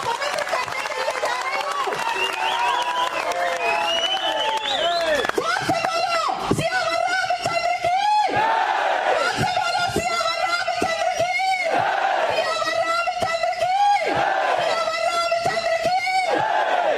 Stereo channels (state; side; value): identical; both; correlation 1.00